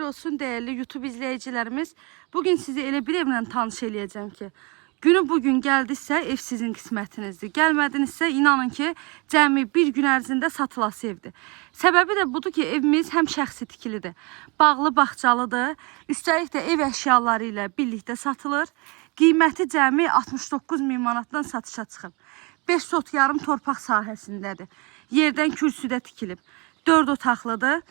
olsun değerli YouTube izleyicilerimiz. Bugün sizi elə bir evlə tanış eləyəcəm ki, günü bugün gəldisə ev sizin qismətinizdir. Gəlmədinizsə inanın ki, cəmi bir gün ərzində satılası evdir. Səbəbi də budur ki, evimiz həm şəxsi tikilidir, bağlı bağçalıdır. Üstəlik də ev əşyaları ilə birlikdə satılır. Qiyməti cəmi 69 min manatdan satışa çıxıb. 5 sot yarım torpaq sahəsindədir. Yerdən kürsüdə tikilib. 4 otaqlıdır.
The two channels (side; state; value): left; quieter; 28.8 dB